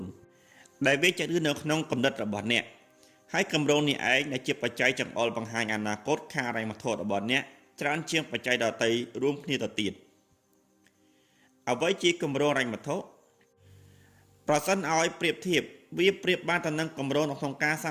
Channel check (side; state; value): both; identical; correlation 1.00